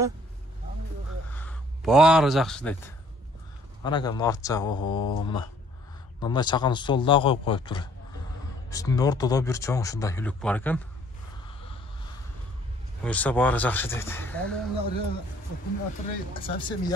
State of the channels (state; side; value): normal; both; correlation 0.60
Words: Баары жакшы дейт. Ана экен арт жагы, ого, мына. Мындай чакан стол да коюп коюптур. Үстүндө ортодо бир чоң ушундай үлүк бар экен. Буюрса баары жакшы дейт. Совсем